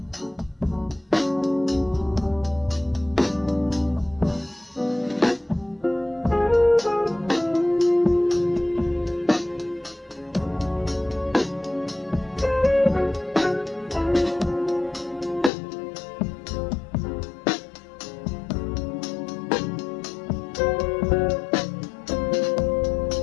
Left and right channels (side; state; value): right; drops out; at 15.5 s